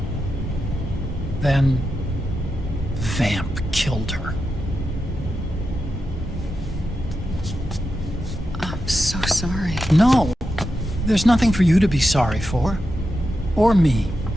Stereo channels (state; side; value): normal; both; correlation 0.88